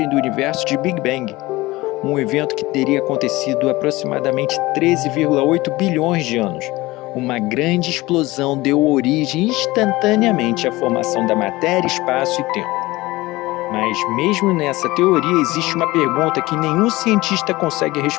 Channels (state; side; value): quieter; right; 20.0 dB